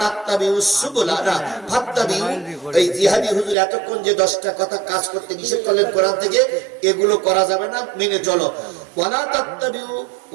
তাত্তাবিউস সুবুলা ফাত্তাবিউ। এই জিহাদি হুজুর এতক্ষণ যে 10টা কথা কাজ করতে নিষেধ করলেন কোরআন থেকে, এগুলো করা যাবে না, মেনে চলো। ওয়ালা তাত্তাবিউ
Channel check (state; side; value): drops out; left; at 3.6 s